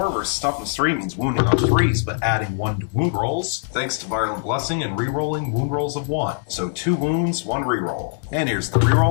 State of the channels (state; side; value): silent; right; digital silence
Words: versus Toughness 3 means wounding on 3s, but adding 1 to wound rolls, thanks to Virulent Blessing and rerolling wound rolls of 1. So 2 wounds, 1 reroll. And here's the